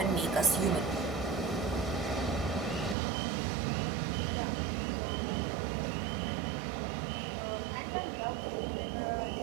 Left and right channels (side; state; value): left; drops out; at 3.0 s